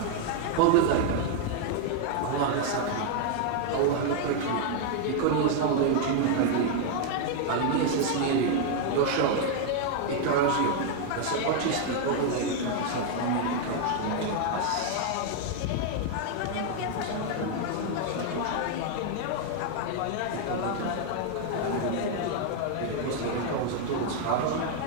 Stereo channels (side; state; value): both; different; correlation 0.00